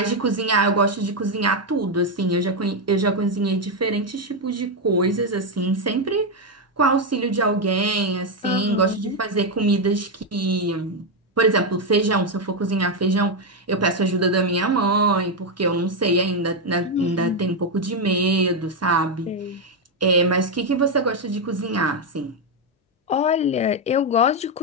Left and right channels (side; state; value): both; normal; correlation 0.04